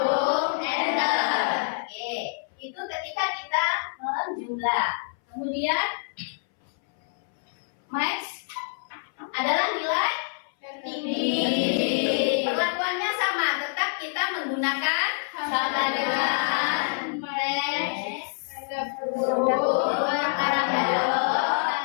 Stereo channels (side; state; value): right; silent; 60 dB below the other